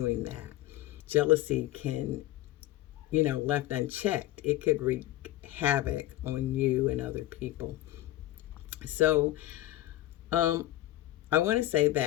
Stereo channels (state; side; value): quieter; right; 15.3 dB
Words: that. Jealousy can, left unchecked, it could wreak havoc on you and other people. So, um, I want to say